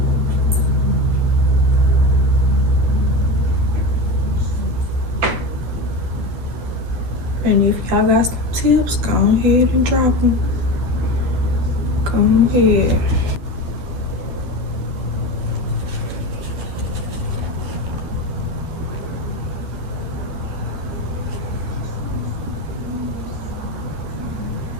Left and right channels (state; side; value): late; left; 11 ms